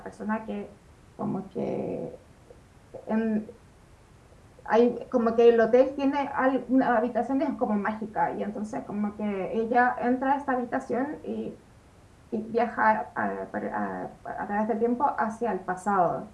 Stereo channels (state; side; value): identical; both; correlation 1.00